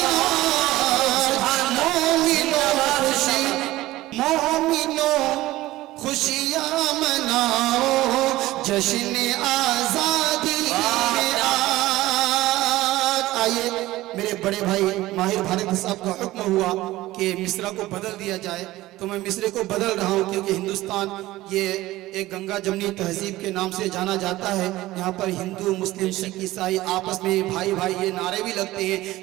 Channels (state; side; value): quieter; left; 17.2 dB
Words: خوشیاں مناؤ جشن آزادی میں آئیے میرے بڑے بھائی ماہر بھارت صاحب کا حکم ہوا کہ مصرع کو بدل دیا جائے تو میں مصرع کو بدل رہا ہوں کیونکہ ہندوستان یہ ایک گنگا جمنی تہذیب کے نام سے جانا جاتا ہے. یہاں پر ہندو مسلم سکھ عیسائی آپس میں بھائی بھائی یہ نعرے بھی لگتے ہیں.